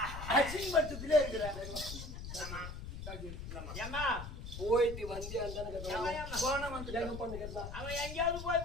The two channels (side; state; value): left; noise; rumble, 8 dB below the sound